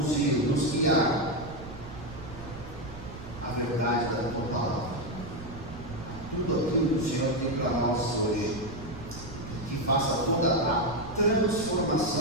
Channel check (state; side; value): noise; right; rumble, 13 dB below the sound